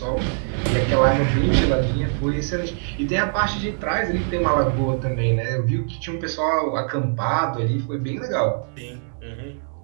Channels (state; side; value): silent; left; digital silence